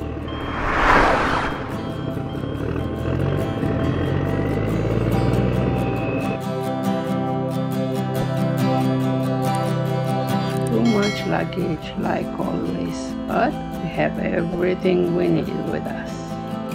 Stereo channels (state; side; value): identical; both; correlation 1.00